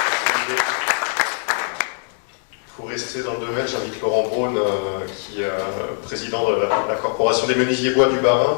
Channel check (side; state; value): right; silent; 65 dB below the other